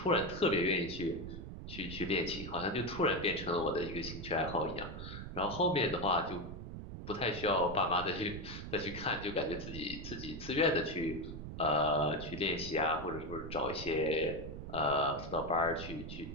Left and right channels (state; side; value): noise; right; rumble, 9 dB below the sound